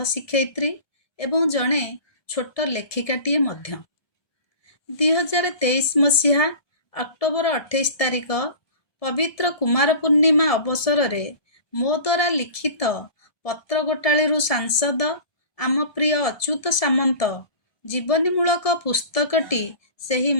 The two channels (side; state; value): right; late; 1.7 ms